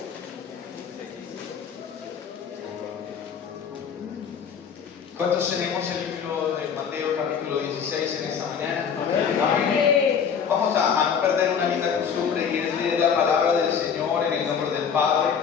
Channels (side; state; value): right; quieter; 7.1 dB